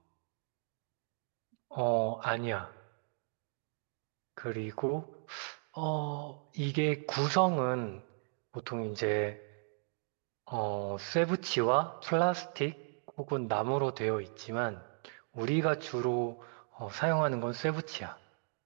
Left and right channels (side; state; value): left; silent; 54 dB below the other